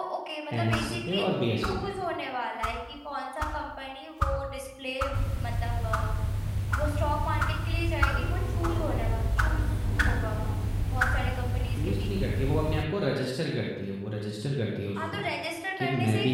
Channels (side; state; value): both; identical; correlation 1.00